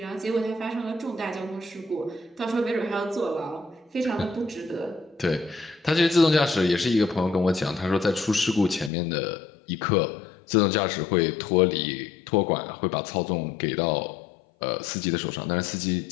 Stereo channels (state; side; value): drops out; right; at 8.9 s